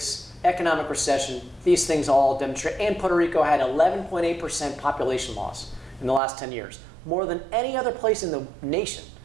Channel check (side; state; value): left; drops out; at 6.2 s